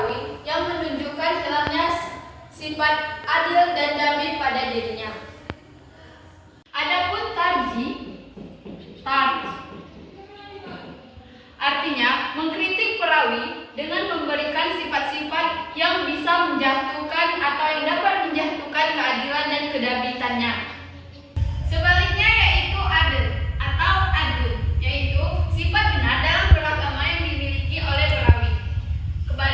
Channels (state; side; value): identical; both; correlation 1.00